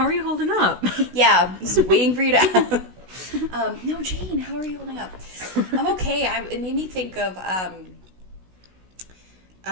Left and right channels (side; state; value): left; late; 16 ms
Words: are you holding up? Yeah, just waiting for you to no, Jane, how are you holding up? I'm okay. It made me think of, I'm